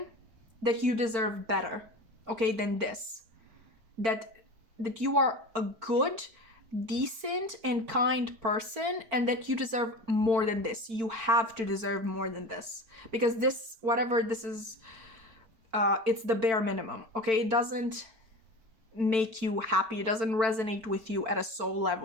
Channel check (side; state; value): left; late; 4.5 ms